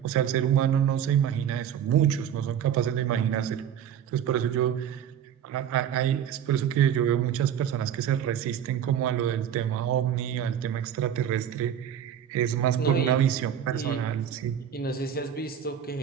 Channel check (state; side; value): quieter; left; 9.3 dB